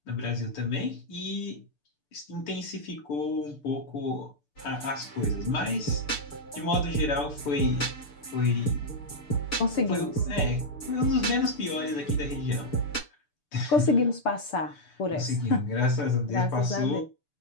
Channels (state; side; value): late; right; 6.8 ms